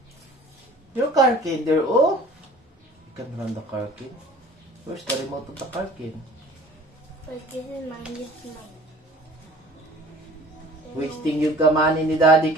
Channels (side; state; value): both; normal; correlation 0.48